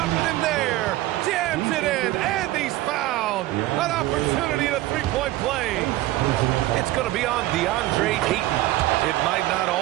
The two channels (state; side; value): quieter; left; 16.7 dB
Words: it in there. Jams it in, and he's fouled. An opportunity at a 3-point play. It's going to be on DeAndre Ayton. It might not